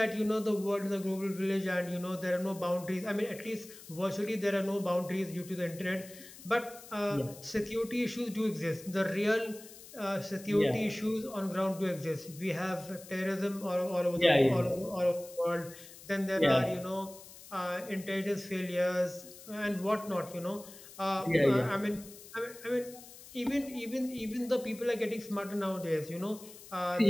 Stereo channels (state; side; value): noise; left; hiss, 18 dB below the sound